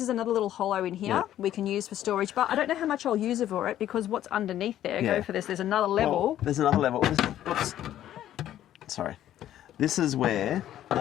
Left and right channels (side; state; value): right; quieter; 12.1 dB